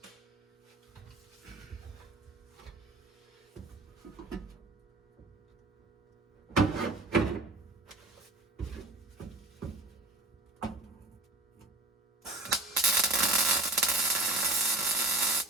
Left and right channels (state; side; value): quieter; left; 3.0 dB